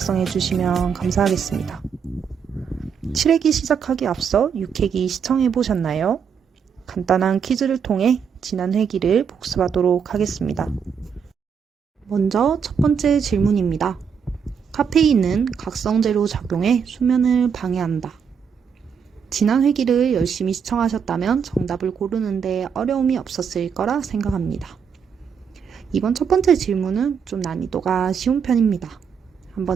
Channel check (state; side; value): quieter; left; 6.8 dB